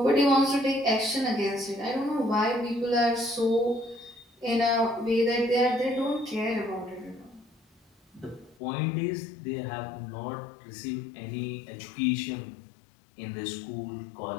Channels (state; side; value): drops out; right; at 8.6 s